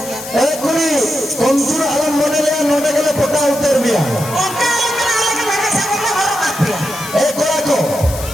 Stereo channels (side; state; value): left; noise; hiss, 12 dB below the sound